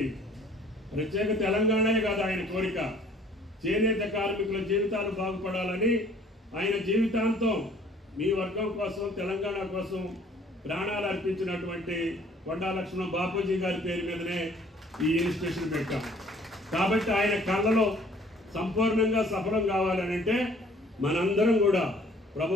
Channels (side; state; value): both; normal; correlation 0.56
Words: ప్రత్యేక తెలంగాణే కాదు ఆయన కోరిక, చేనేత కార్మికుల జీవితాలు బాగుపడాలని ఆయన జీవితాంతం మీ వర్గం కోసం తెలంగాణ కోసం ప్రాణాలు అర్పించినటువంటి కొండా లక్ష్మణ బాపూజీ గారి పేరు మీదనే ఈ ఇన్స్టిట్యూషన్ పెట్టాం. కాబట్టి ఆయన కళ్ళలో సంపూర్ణంగా సఫలం కావాలని అంటే మనందరం కూడా